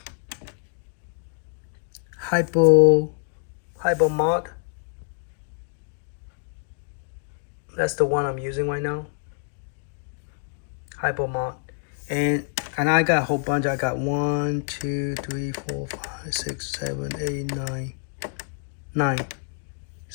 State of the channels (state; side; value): silent; right; digital silence